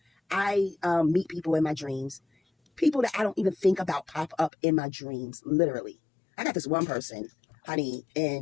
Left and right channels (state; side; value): drops out; right; at 4.5 s